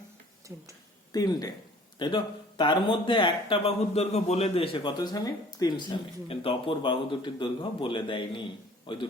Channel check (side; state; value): both; normal; correlation 0.51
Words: 3টে, তাই তো? তার মধ্যে একটা বাহুর দৈর্ঘ্য বলে দিয়েছে কত সেমি, 3 সেমি, কিন্তু অপর বাহু দুটির দৈর্ঘ্য বলে দেয়নি। ওই